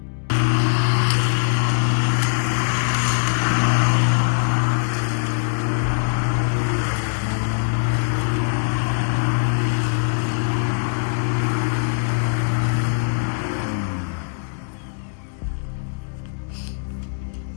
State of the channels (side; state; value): right; silent; digital silence